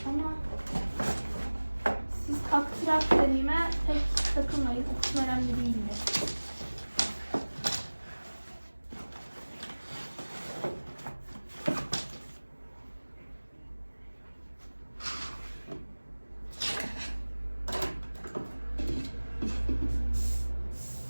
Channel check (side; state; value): both; inverted; correlation -1.00